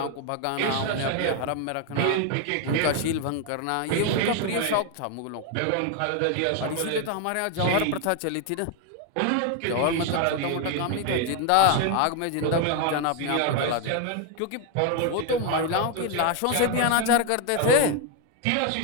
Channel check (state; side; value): different; both; correlation 0.01